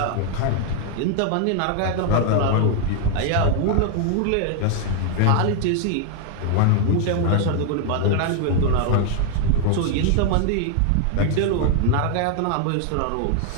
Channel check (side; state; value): both; different; correlation 0.00